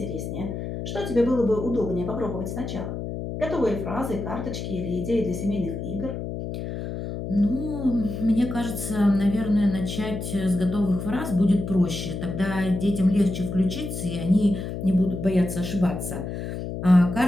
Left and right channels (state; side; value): noise; left; hum, 6 dB below the sound